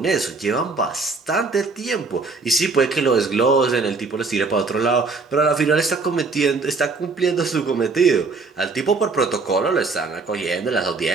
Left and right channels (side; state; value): left; quieter; 4.1 dB